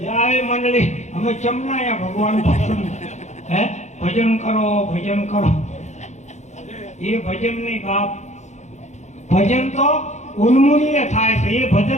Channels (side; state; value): right; late; 0.34 ms